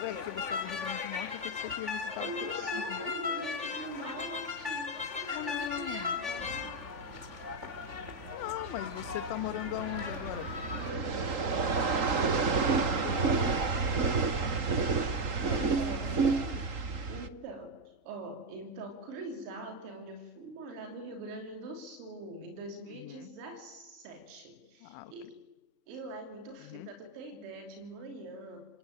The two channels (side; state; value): left; late; 3.8 ms